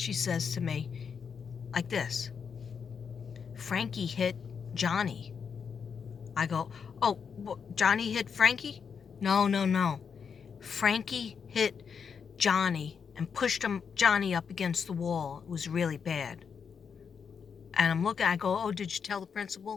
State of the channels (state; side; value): quieter; right; 6.5 dB